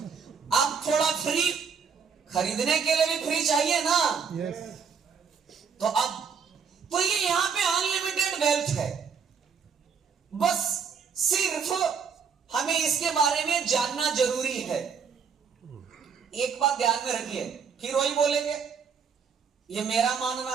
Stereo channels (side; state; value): left; quieter; 6.3 dB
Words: अब थोड़ा फ्री, खरीदने के लिए भी फ्री चाहिए ना। यस। तो अब तो ये यहां पे अनलिमिटेड वेल्थ है, बस सिर्फ हमें इसके बारे में जानना जरूरी है। एक बात ध्यान में रखिए, फिर वही बोलेंगे, ये मेरा